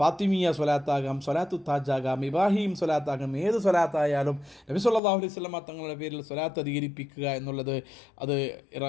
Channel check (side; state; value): right; drops out; at 5.0 s